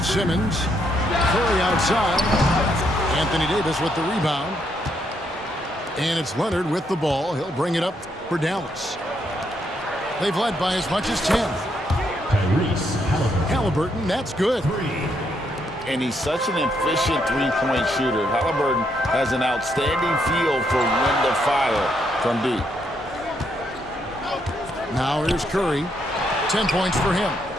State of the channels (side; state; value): both; normal; correlation 0.76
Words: Simmons. Curry outside. Anthony Davis with the rebound. And it's Leonard with the ball. He'll bring it up for Dallas. They've led by as much as 10. Tyrese Halliburton. Halliburton, that's good. 3. And he's such an efficient three-point shooter. Halliburton has an outstanding feel for when to fire from deep. Now here's Curry. 10 points for him.